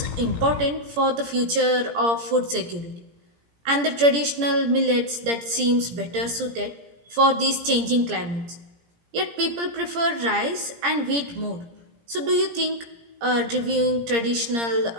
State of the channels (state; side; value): late; left; 17 ms